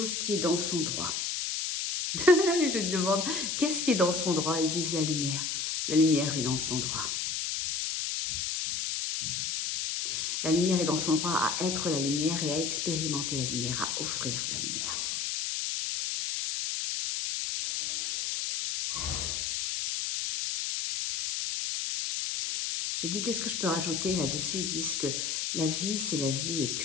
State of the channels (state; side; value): noise; left; hiss, 1 dB below the sound